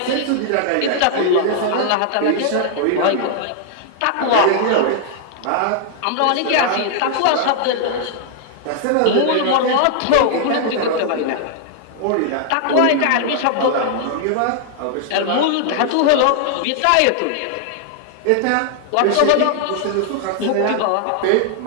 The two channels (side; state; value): both; different; correlation -0.01